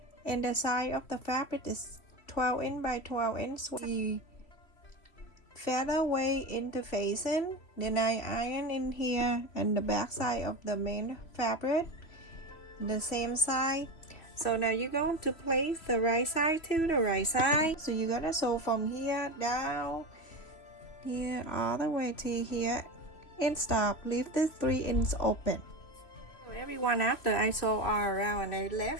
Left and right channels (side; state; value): right; late; 3.1 ms